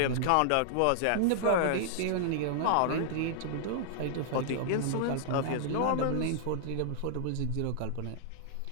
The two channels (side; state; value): both; different; correlation -0.01